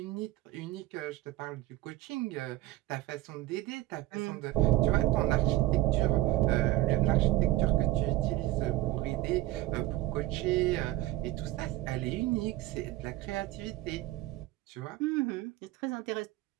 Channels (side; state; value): left; quieter; 16.5 dB